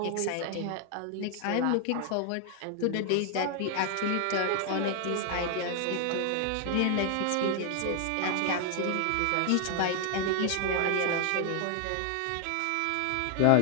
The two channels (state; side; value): different; both; correlation 0.00